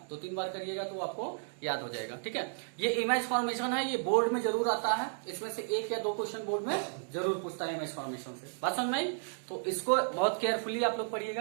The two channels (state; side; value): silent; left; digital silence